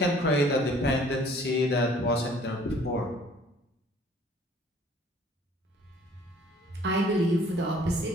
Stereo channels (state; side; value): normal; both; correlation 0.55